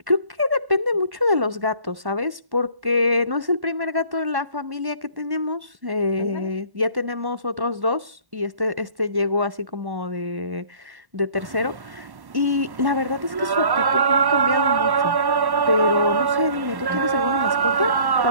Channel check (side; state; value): left; late; 1.1 ms